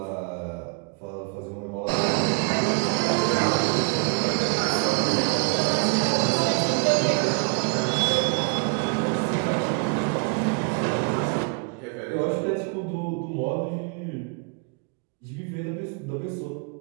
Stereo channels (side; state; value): left; quieter; 36.6 dB